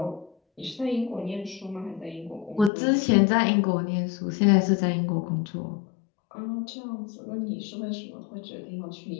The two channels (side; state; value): right; drops out; at 2.7 s